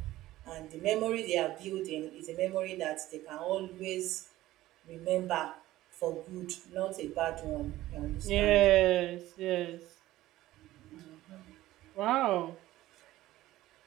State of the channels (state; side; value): quieter; left; 15.9 dB